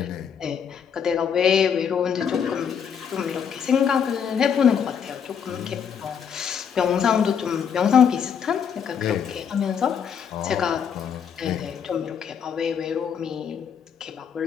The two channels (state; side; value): quieter; right; 7.5 dB